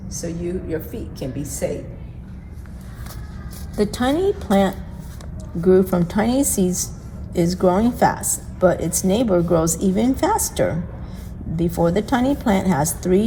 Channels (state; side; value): identical; both; correlation 1.00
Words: so your feet can be safe. The tiny plant grew from tiny seeds, is growing fast, but its neighbor grows even faster. Before the tiny plant has